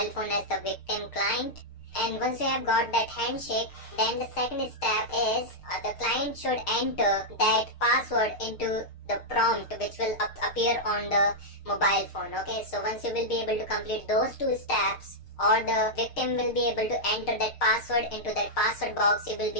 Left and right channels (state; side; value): late; right; 6.5 ms